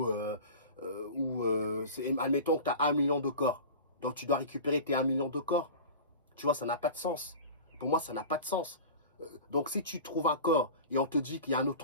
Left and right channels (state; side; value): inverted; both; correlation -0.34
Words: où, admettons que tu as 1 million de corps. Donc, tu dois récupérer tes 1 million de corps. Tu vois, ça n'a pas de sens. Pour moi, ça n'a pas de sens. Donc, si tu trouves un corps et on te dit qu'il y a un